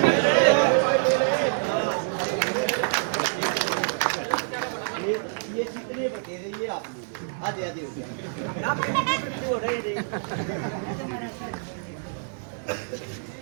ये कितने बटे रही है आप लोग? आधे आधे हो रहे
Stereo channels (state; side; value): silent; left; 60 dB below the other